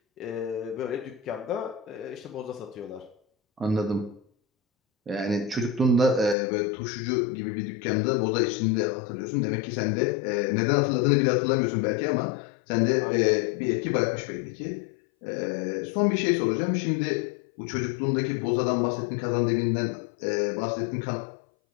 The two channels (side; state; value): right; drops out; at 6.4 s